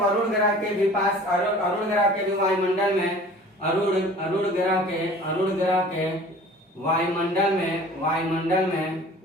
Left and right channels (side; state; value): both; normal; correlation 0.46